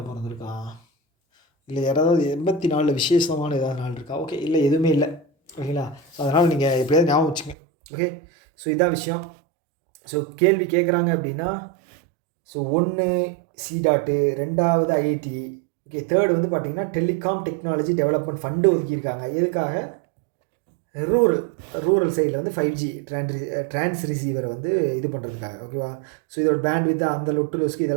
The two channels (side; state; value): left; drops out; at 7.6 s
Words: பிறந்திருக்கா? இல்லை யாராவது 84 விசேஷமான ஏதாவது நாள் இருக்கா? ஓகே, இல்லை, எதுவுமே இல்லை. ஓகேங்களா, ஸோ அதனால் நீங்கள் எப்படியாவது ஞாபகம் வச்சுங்க. ஓகே, ஸோ இதான் விஷயம். ஸோ கேள்வி கேட்குறாங்க அப்படின்னா, ஸோ 1 சி.டாட்டு, 2வது ஐஐடி. ஓகே, தேர்டு வந்து பார்த்திங்கன்னா டெலிகாம் டெக்னாலஜி டெவலப்மெண்ட் ஃபண்டு ஒதுக்கியிருக்காங்க. எதுக்காக? ரூரல் சைடில் வந்து 5G ட்ரான்ஸ் ரிசீவரை வந்து இது பண்ணுறதுக்காக. ஓகேவா, ஸோ இதோட பேண்ட் வித் அந்த லொட்டு லொஸ்க்கு